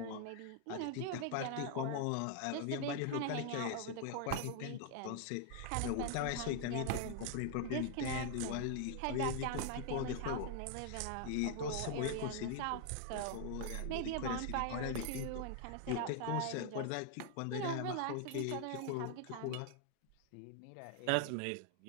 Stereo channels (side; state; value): both; different; correlation 0.00